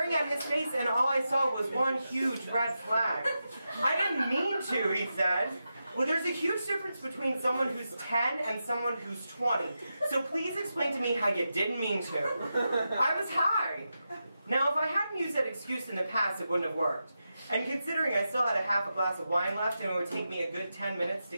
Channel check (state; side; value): inverted; both; correlation -0.89